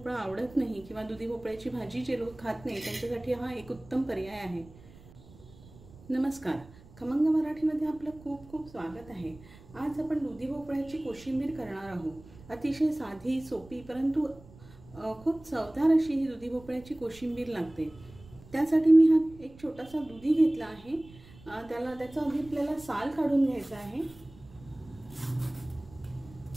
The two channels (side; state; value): right; noise; rumble, 21 dB below the sound